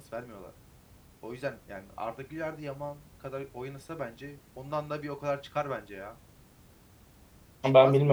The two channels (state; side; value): identical; both; correlation 1.00